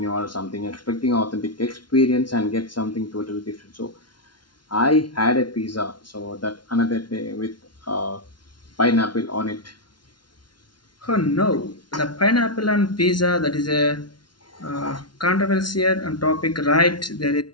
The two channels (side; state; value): right; late; 0.71 ms